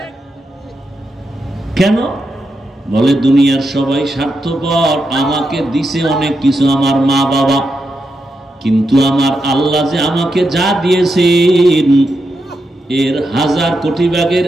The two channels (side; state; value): both; normal; correlation 0.85